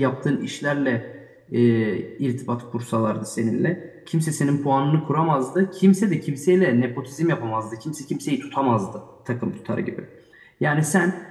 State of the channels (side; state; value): both; identical; correlation 1.00